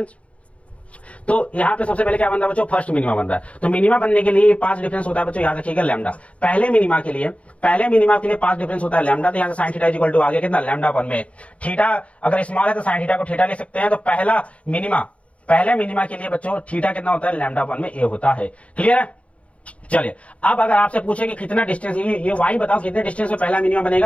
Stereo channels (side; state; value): right; late; 0.065 ms